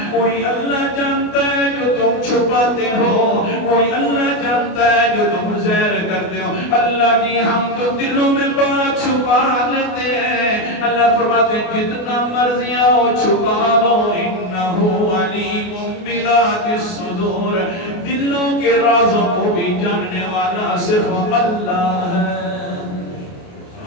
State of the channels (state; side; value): late; right; 28 ms